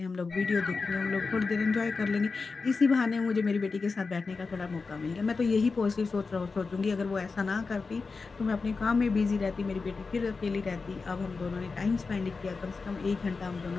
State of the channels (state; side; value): quieter; right; 4.4 dB